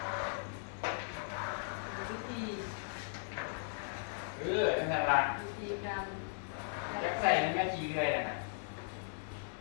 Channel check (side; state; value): right; silent; 53 dB below the other